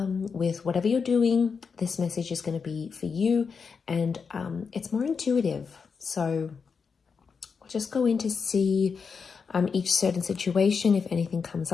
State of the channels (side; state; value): right; quieter; 5.6 dB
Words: with whatever you're doing, this message is going to be for you, and it's more intuitive. So we'll just go in to see each certain situation, if anything comes